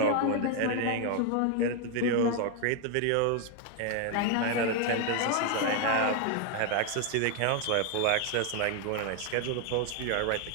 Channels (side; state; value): both; different; correlation 0.01